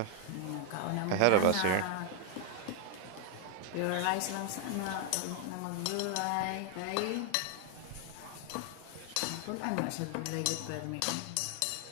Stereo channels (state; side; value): different; both; correlation 0.00